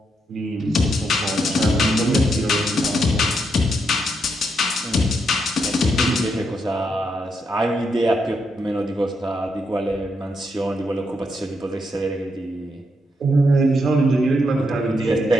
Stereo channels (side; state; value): both; normal; correlation 0.80